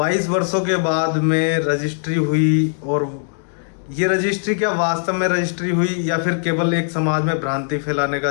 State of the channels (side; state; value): right; silent; digital silence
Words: वर्षों के बाद में रजिस्ट्री हुई, और ये रजिस्ट्री क्या वास्तव में रजिस्ट्री हुई या फिर केवल एक समाज में भ्रांति फैलाने का